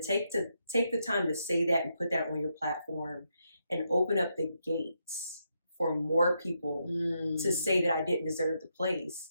take the time to say that and put that on your platform and open up the gates for more people to say that I didn't deserve the place,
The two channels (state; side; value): inverted; both; correlation -0.81